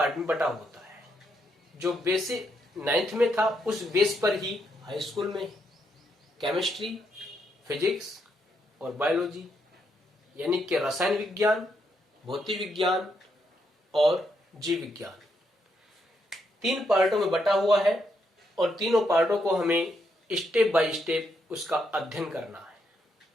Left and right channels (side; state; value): both; normal; correlation 0.78